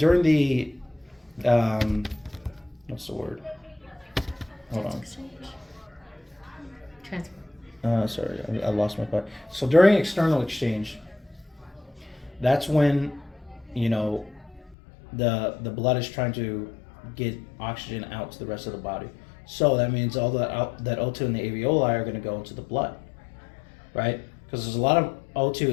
what's the word? Hold on. transfer. Sorry, I lost my thought. So during external exchange, that's when, the blood is trying to get oxygen out to the rest of the body. So that means all that O2 in the alveoli are going to go into the blood, right? Because there's a lot of O2.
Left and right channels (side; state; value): right; drops out; at 14.8 s